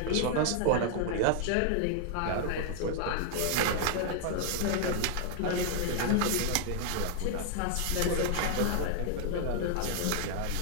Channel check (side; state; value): both; different; correlation 0.00